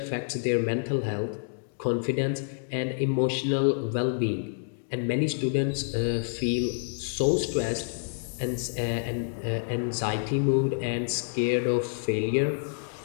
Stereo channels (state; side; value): silent; right; digital silence